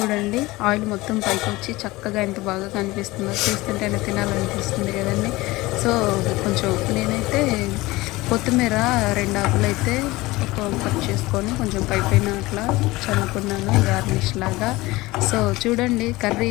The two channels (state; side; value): quieter; right; 20.2 dB